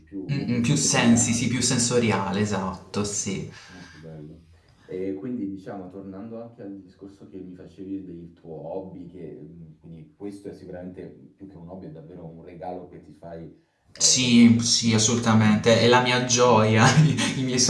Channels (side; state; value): both; identical; correlation 1.00